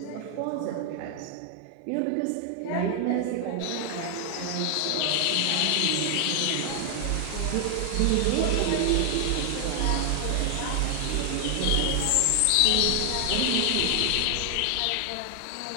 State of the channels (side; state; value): both; different; correlation 0.00